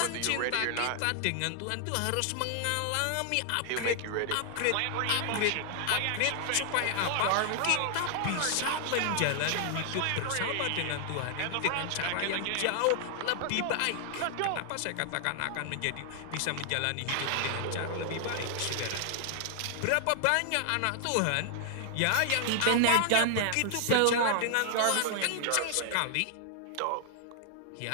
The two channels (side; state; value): both; different; correlation 0.00